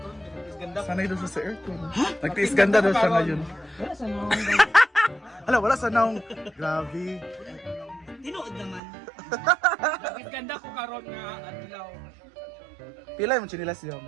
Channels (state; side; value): drops out; left; at 8.8 s